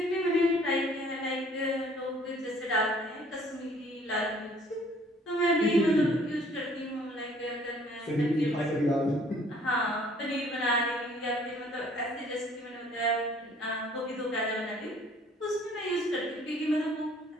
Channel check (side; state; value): both; normal; correlation 0.57